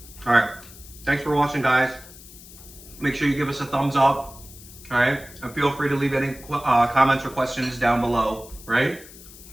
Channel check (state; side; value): noise; left; hiss, 19 dB below the sound